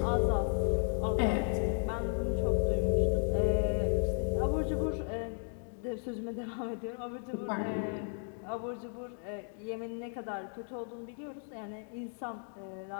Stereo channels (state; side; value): silent; right; 55 dB below the other